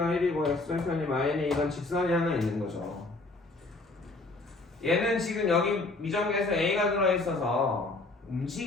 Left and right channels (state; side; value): quieter; right; 3.1 dB